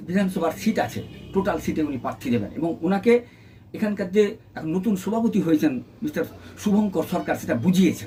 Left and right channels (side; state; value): both; identical; correlation 1.00